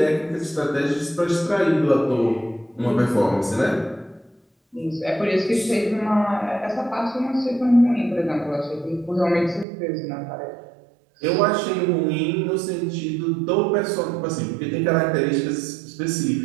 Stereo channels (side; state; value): left; drops out; at 9.7 s